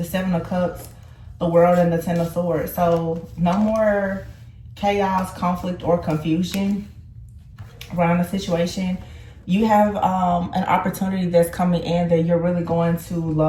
Seven of Cups, the World, and the Ten of Swords. So no more chaos, conflict, or confusion around the situation. You have an opportunity that's coming in that you're really going to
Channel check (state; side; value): identical; both; correlation 1.00